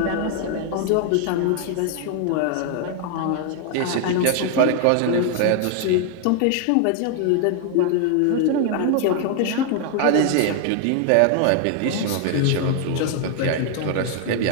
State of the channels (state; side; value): different; both; correlation 0.00